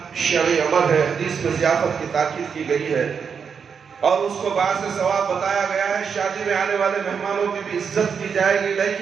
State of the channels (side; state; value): left; quieter; 6.5 dB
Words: شرعی امر ہے، حدیث میں ضیافت کی تاکید کی گئی ہے اور اس کو باعث ثواب بتایا گیا ہے۔ شادی میں آنے والے مہمانوں کی بھی عزت کی جائے گی،